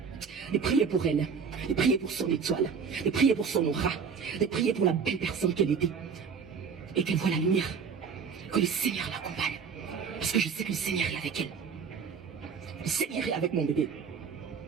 pour elle, de prier pour son étoile, de prier pour son aura, de prier pour la belle personne qu'elle était, et qu'elle voit la lumière, que le Seigneur l'accompagne, parce que je sais que le Seigneur est avec elle, le Seigneur est avec mon bébé.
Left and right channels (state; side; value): quieter; left; 6.1 dB